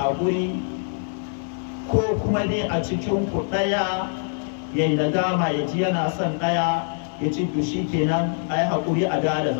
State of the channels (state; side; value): silent; right; digital silence